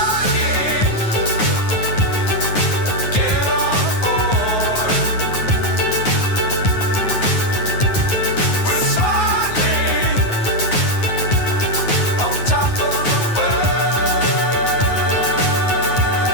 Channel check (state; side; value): late; right; 9.4 ms